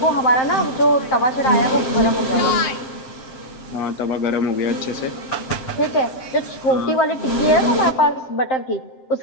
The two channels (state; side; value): late; right; 7.6 ms